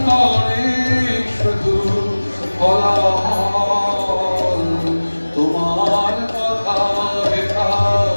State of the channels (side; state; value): both; inverted; correlation -1.00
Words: করে শুধু কোলাহল। তোমার কথা হেথা